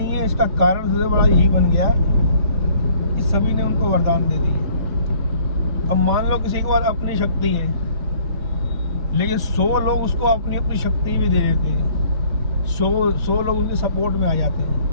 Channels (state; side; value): late; left; 3.1 ms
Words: है। इसका कारण सबसे बड़ा यही बन गया कि सभी ने उनको वरदान दे दिए। अब मान लो किसी के पास अपनी शक्ति है, लेकिन 100 लोग उसको अपनी अपनी शक्ति भी दे देते हैं। 100 लोग उनके सपोर्ट में आ जाते